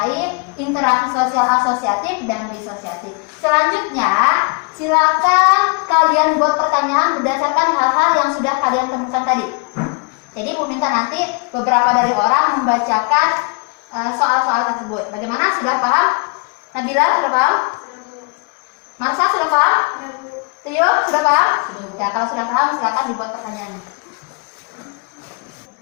interaksi sosial asosiatif dan disosiatif. Selanjutnya, silakan kalian buat pertanyaan berdasarkan hal-hal yang sudah kalian temukan tadi. Jadi Bu minta nanti beberapa dari orang membacakan soal-soal tersebut. Bagaimana? Sudah paham? Nabila sudah paham? Marsa sudah paham? Tio sudah paham? Ya, kalau sudah paham silakan dibuat pertanyaannya.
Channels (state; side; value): quieter; right; 34.6 dB